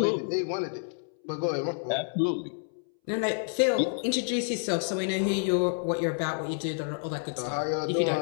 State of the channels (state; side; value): silent; right; 59 dB below the other